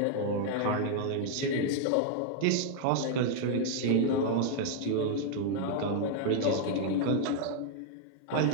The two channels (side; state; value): both; different; correlation 0.00